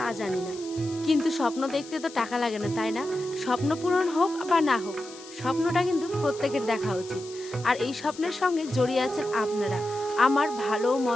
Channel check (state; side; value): noise; left; hiss, 17 dB below the sound